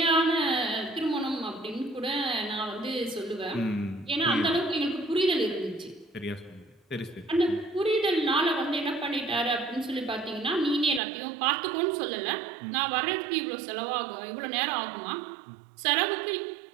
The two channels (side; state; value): left; drops out; at 11.0 s